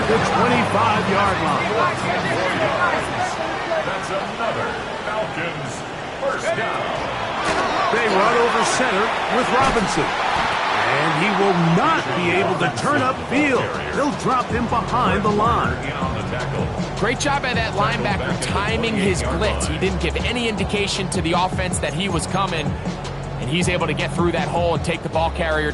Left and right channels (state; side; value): identical; both; correlation 1.00